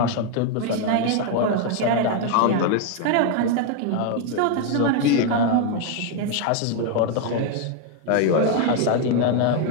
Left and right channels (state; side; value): different; both; correlation 0.00